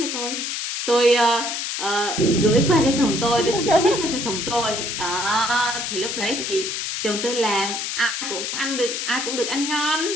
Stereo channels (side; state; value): left; noise; hiss, 3 dB below the sound